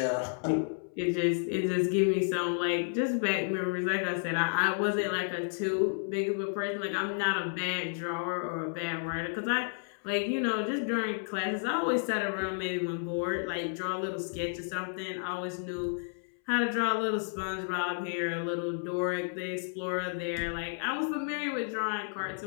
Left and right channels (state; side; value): silent; right; 57 dB below the other